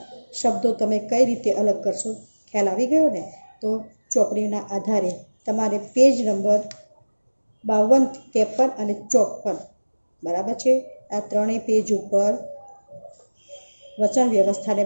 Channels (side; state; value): both; inverted; correlation -1.00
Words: શબ્દો તમે કઈ રીતે અલગ કરશો? ખ્યાલ આવી ગયો ને? તો ચોપડીના આધારે તમારે પેજ નંબર 52, 53 અને 54, બરાબર છે, આ ત્રણેય પેજ ઉપર વચન વ્યવસ્થાને